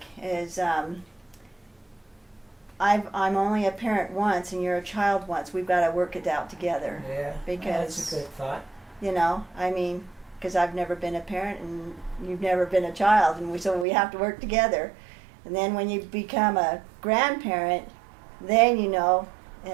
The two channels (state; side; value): drops out; left; at 13.9 s